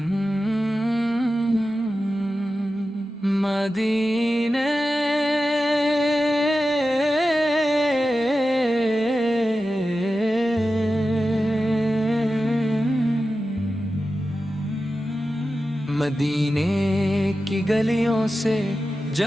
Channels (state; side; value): normal; both; correlation 0.93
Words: مدینے کی گلیوں سے